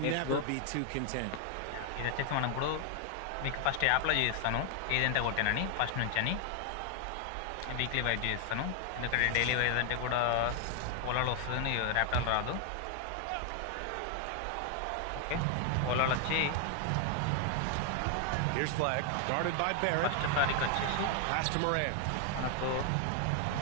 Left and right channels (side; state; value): both; different; correlation 0.00